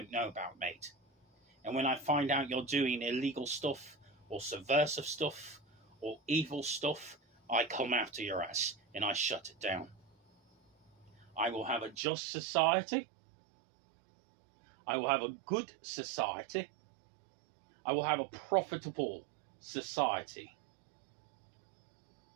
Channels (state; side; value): drops out; left; at 12.0 s